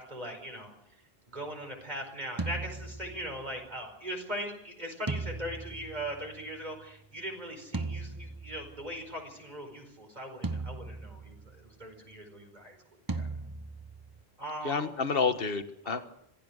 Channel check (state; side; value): normal; both; correlation 0.16